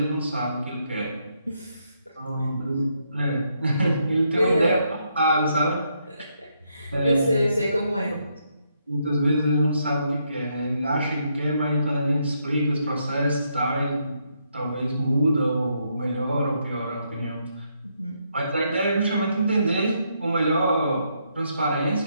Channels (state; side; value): inverted; both; correlation -0.77